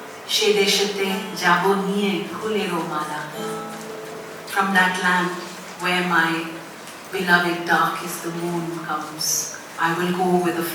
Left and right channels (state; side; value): identical; both; correlation 1.00